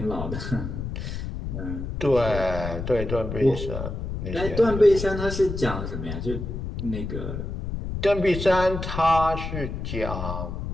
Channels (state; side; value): noise; left; rumble, 5 dB below the sound